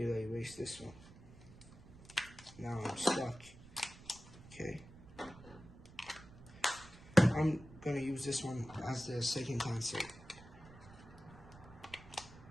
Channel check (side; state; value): right; noise; rumble, 19 dB below the sound